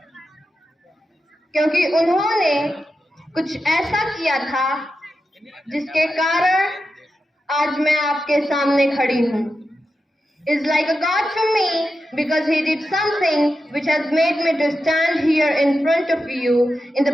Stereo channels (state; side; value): normal; both; correlation 0.90